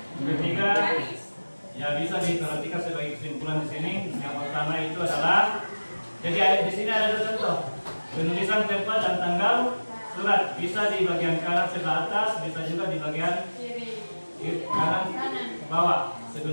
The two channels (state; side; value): inverted; both; correlation -1.00